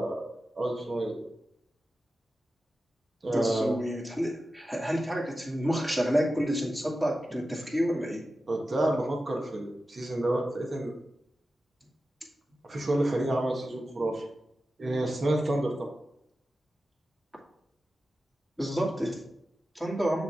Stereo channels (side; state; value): both; normal; correlation 0.93